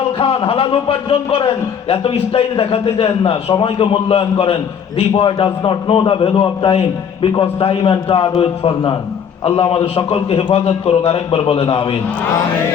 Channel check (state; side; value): quieter; right; 7.6 dB